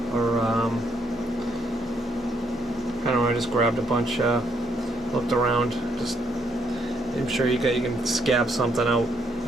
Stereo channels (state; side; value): normal; both; correlation 0.73